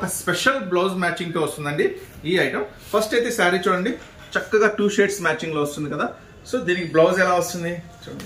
స్పెషల్ బ్లౌజ్ మ్యాచింగ్ తో వస్తుందండి. ఈ ఐటమ్ ఫస్ట్ అయితే శారీ చూడండి, చక్కగా 2 షేడ్స్ మ్యాచింగ్ లో వస్తుంది కదా. సో దీనికి బ్లౌజ్ ఎలా వస్తుంది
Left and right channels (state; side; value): identical; both; correlation 1.00